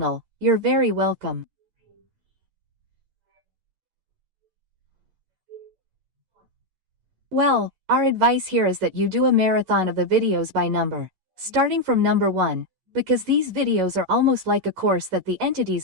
you're very welcome. Well, our advice here is that you do a marathon of the videos by number, starting from number 1, because these videos are almost like a course that the entities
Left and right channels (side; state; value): left; late; 11 ms